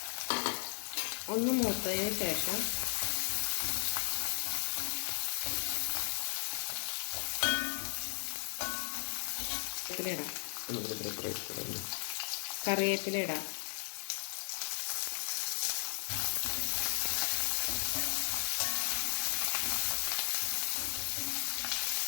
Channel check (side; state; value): right; silent; 54 dB below the other